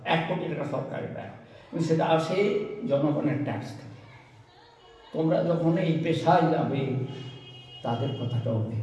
1 কোটি টাকা সরকারের দেয়, কিন্তু সেটা আসে জনগণের ট্যাক্স থেকে। তোমরা যখন এই পেশায় যাবে, তাদের কথাটাও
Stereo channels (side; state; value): both; identical; correlation 1.00